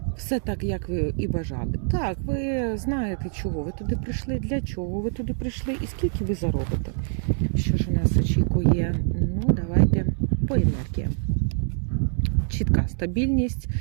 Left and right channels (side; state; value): left; silent; digital silence